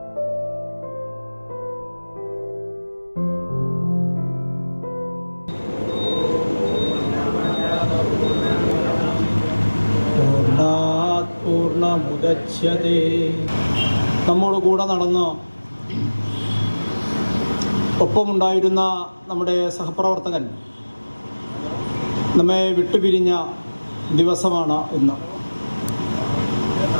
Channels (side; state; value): both; inverted; correlation -1.00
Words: കൂടെ നടന്ന് ഒപ്പമുണ്ടായിരുന്ന നമ്മുടെ സഹപ്രവർത്തകൻ നമ്മെ വിട്ടുപിരിഞ്ഞ ദിവസമാണ് ഇന്ന്.